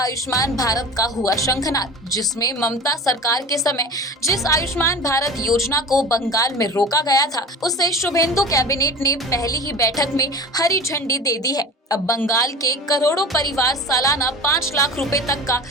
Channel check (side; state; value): both; normal; correlation 0.35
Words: भारत का हुआ शंखनाद, जिसमें ममता सरकार के समय जिस आयुष्मान भारत योजना को बंगाल में रोका गया था, उसे शुभेंदु कैबिनेट ने पहली ही बैठक में हरी झंडी दे दी है। अब बंगाल के करोड़ों परिवार सालाना 5 लाख रुपए तक का